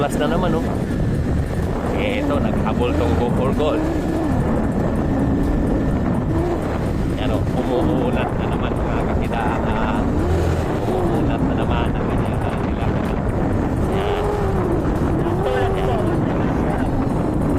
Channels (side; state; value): both; identical; correlation 1.00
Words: na naman oh. Ito, naghabol tong Go for Gold. Yan oh, umuunat na naman mga kakidaan. Umuunat na naman ang kanyang nila. Yan.